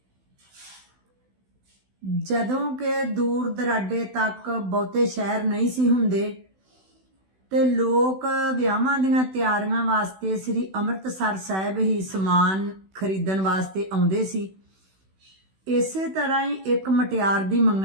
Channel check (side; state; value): left; late; 16 ms